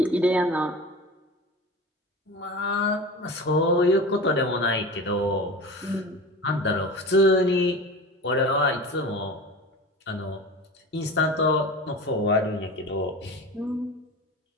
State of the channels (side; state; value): both; normal; correlation 0.32